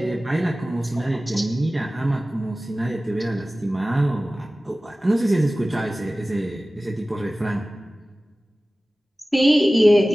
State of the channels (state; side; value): normal; both; correlation 0.97